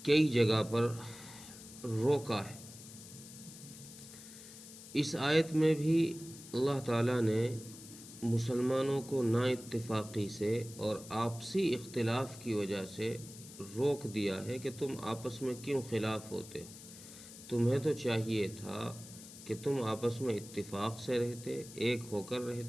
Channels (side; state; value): left; noise; hiss, 16 dB below the sound